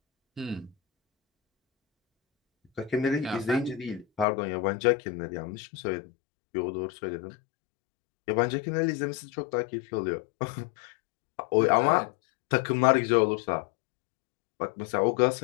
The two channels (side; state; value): right; drops out; at 4.2 s